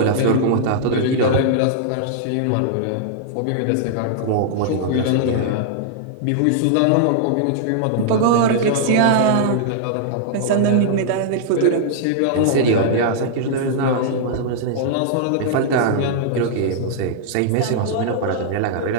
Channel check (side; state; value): both; different; correlation -0.01